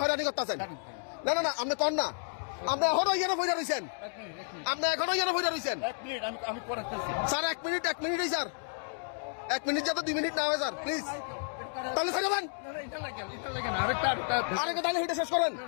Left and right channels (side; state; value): right; silent; digital silence